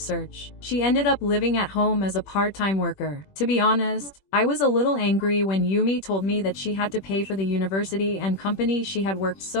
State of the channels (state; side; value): late; right; 21 ms